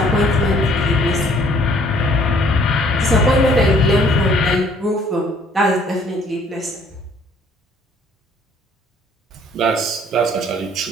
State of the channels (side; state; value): both; normal; correlation 0.60